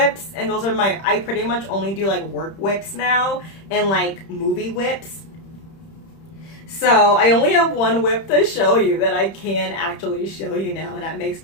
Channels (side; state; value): right; late; 31 ms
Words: and those are I pretty much only do like work whips now, and like movie whips. So I only have one whip to show you that I can actually show you now, and that makes